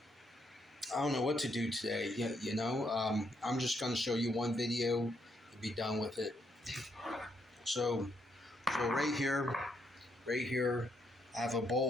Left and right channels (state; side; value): normal; both; correlation 0.76